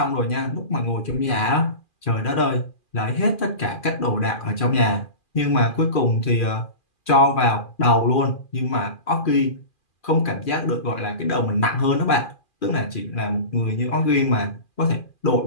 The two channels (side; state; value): right; late; 2.4 ms